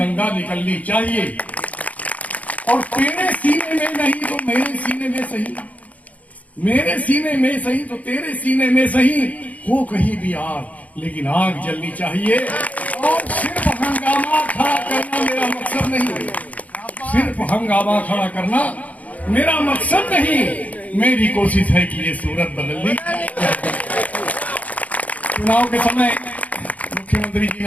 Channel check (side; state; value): right; late; 0.071 ms